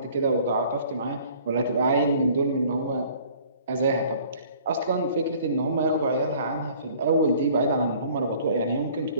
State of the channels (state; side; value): inverted; both; correlation -0.53